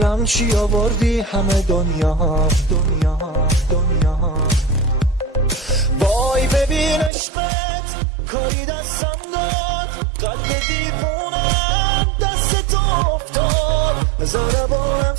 چی آوردی؟ همه دنیام. وای ببین عشقت کاری دستم داد، قلب دیوونم دست تو افتاد. ضربانم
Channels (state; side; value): drops out; left; at 7.1 s